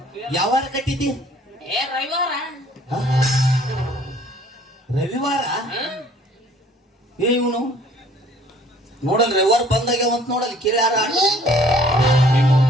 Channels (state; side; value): normal; both; correlation 0.56